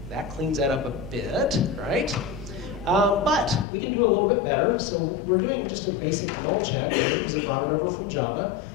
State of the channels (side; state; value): right; drops out; at 3.7 s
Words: That cleans that up a bit, right? But we can do a little bit better. So we're doing just a basic null check here because it brought it over from Java.